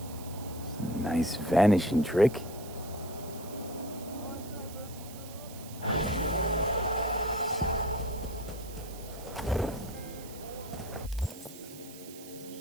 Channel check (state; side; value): noise; right; hiss, 16 dB below the sound